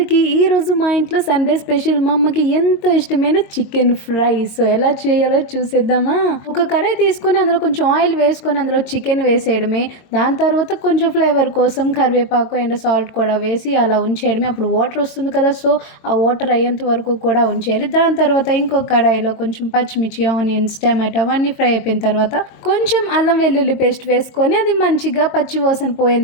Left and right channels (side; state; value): right; late; 22 ms